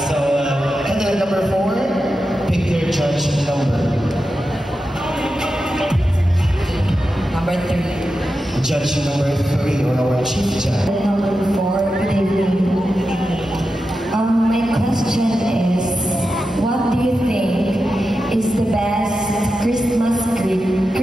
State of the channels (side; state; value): both; normal; correlation 0.90